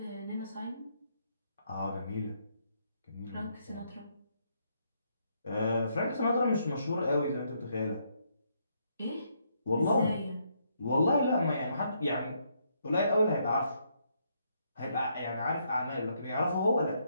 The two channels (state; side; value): inverted; both; correlation -0.74